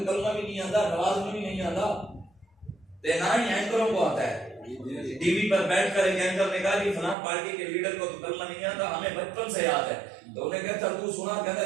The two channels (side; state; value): left; drops out; at 7.2 s